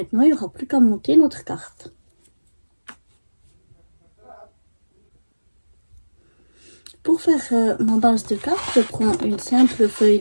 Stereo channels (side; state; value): both; inverted; correlation -1.00